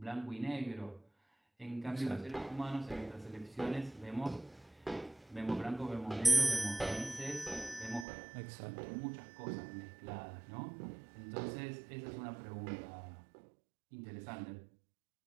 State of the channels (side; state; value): left; drops out; at 8.1 s